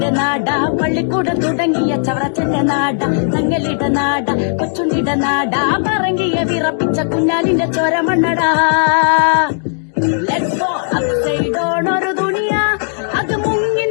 നാട, പള്ളിക്കൂടം തുടങ്ങിയ ചവറച്ചന്റെ നാട, തങ്ങലിട നാട, കൊച്ചുണ്ടിട നാട, പറങ്കിയ വിറപ്പിച്ച കുഞ്ഞാലിന്റെ ചോരമണ്ണടാ. ലെറ്റ്സ് ഗോ അപ്സൈഡ് ഡൗൺ ഒരു ദുനിയ, അത് മുങ്ങി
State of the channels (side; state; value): right; silent; 66 dB below the other